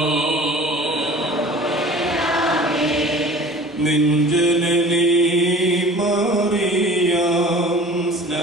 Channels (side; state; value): both; normal; correlation 0.44